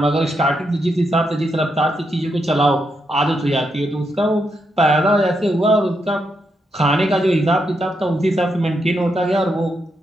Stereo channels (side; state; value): both; normal; correlation 0.82